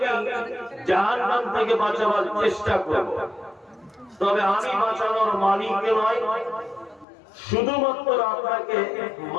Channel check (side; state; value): right; drops out; at 7.1 s